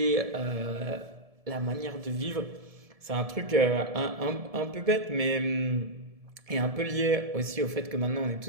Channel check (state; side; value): late; left; 1.7 ms